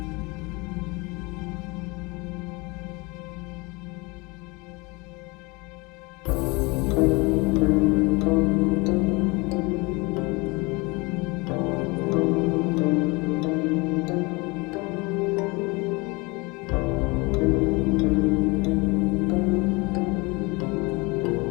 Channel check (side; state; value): right; quieter; 26.6 dB